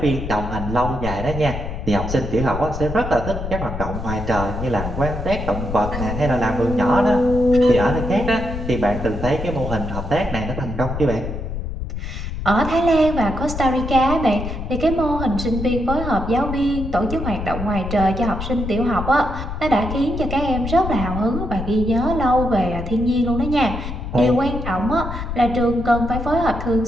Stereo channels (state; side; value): noise; left; rumble, 6 dB below the sound